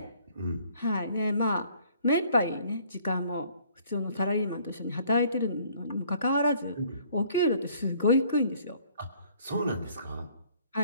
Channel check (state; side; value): inverted; both; correlation -0.59